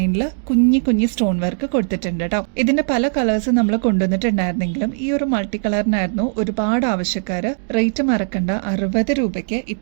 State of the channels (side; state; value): left; silent; digital silence